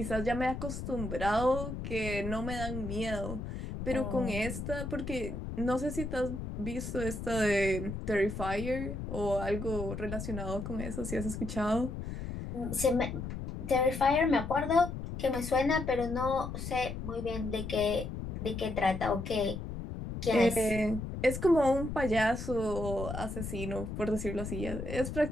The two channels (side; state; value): left; noise; rumble, 6 dB below the sound